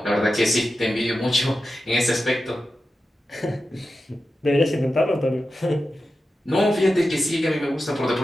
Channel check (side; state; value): both; normal; correlation 0.92